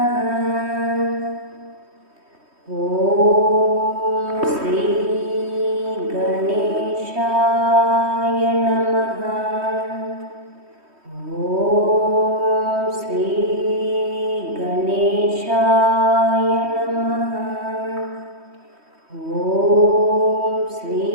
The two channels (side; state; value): left; late; 3.2 ms